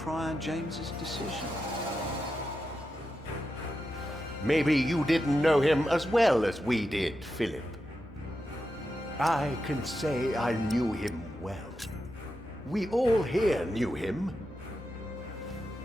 James's decision. Maybe you didn't know him as well as we did, Philip. I can say I knew him well. We all here knew him.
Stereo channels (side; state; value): both; normal; correlation 0.88